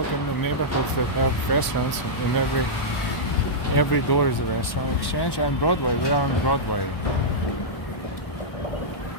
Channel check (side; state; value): right; late; 1.1 ms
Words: in the neighborhoods that have restaurants, in every door is a restaurant. Exchange and Broadway. We are on Broadway.